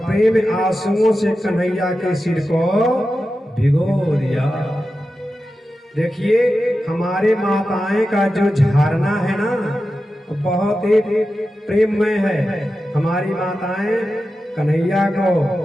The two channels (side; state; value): both; normal; correlation 0.92